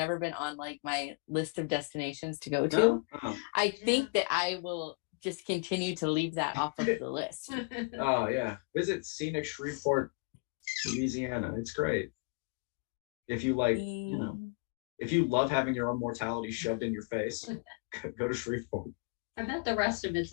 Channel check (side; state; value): right; quieter; 32.7 dB